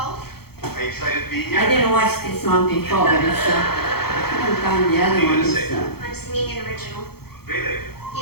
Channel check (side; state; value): right; late; 0.96 ms